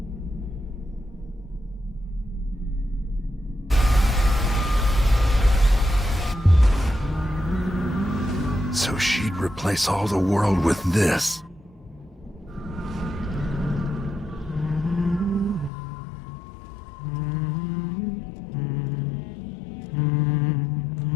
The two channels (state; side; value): drops out; right; at 15.7 s